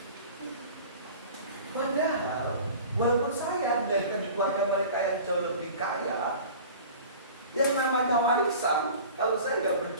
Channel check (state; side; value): inverted; both; correlation -0.41